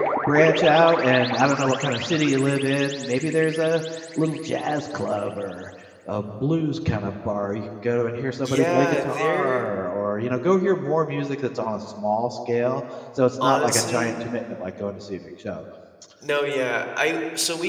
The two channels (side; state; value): both; identical; correlation 1.00